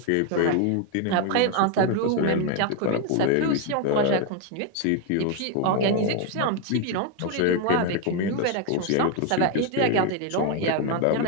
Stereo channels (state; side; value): different; both; correlation 0.01